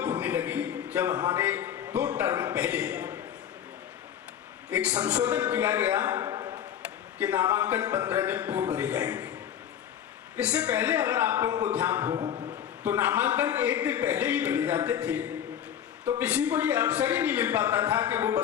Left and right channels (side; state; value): right; quieter; 9.7 dB